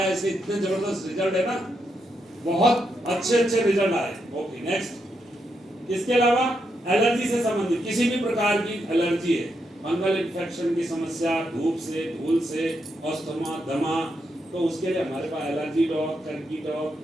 ऐसे इतने जबरदस्त रिजल्ट है ना, बहुत अच्छे रिजल्ट आए। Okay, next. इसके अलावा एलर्जी से संबंधित किसी भी प्रकार की एलर्जी है, फंगल इन्फेक्शन की समस्या, धूप से, धूल से, अस्थमा, दमा, तो उसके लिए हमारे पास allergy dog, turkey dog,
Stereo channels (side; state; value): both; normal; correlation 0.82